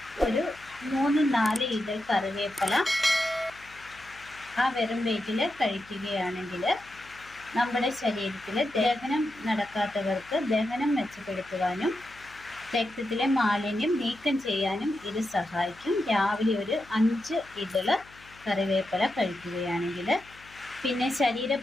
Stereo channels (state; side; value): noise; left; hum, 24 dB below the sound